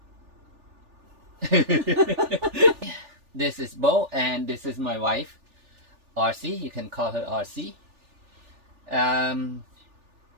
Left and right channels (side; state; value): left; late; 3.4 ms